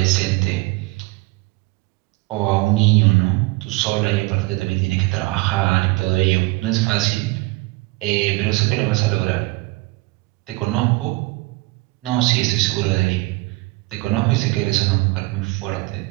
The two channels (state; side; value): quieter; left; 22.2 dB